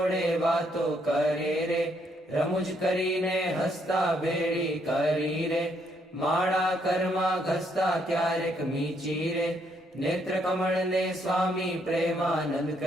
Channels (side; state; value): both; normal; correlation 0.72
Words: वातो करे रे रमुज करीने हसता बेड़ी करी रे माड़ा कर्मा घसता क्यारेक मीची रे नेत्र कमल ने स्वामी प्रेमानंद